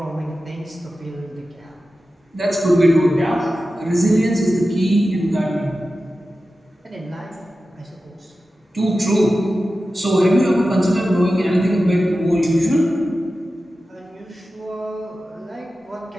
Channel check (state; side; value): normal; both; correlation 0.93